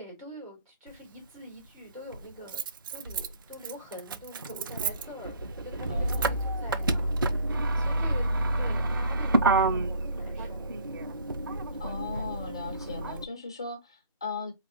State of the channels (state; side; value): inverted; both; correlation -0.56